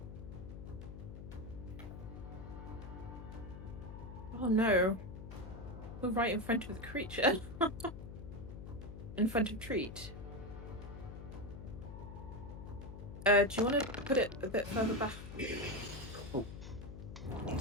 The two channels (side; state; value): left; noise; hum, 10 dB below the sound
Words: Oh no. We're right in front of the creature. In front of Treat. Do you want to put it a bit further back? Oh. One